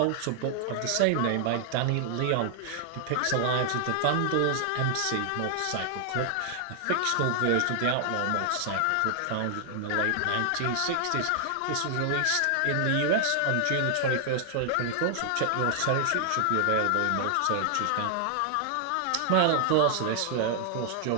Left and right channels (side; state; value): both; different; correlation 0.00